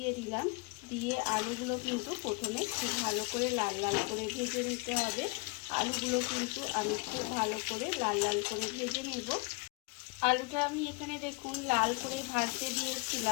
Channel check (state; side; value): quieter; right; 27.4 dB